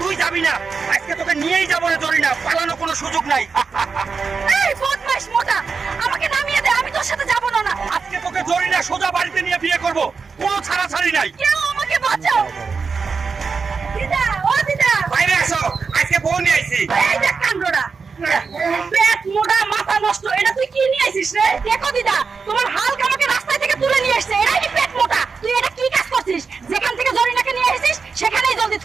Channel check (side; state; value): left; quieter; 5.1 dB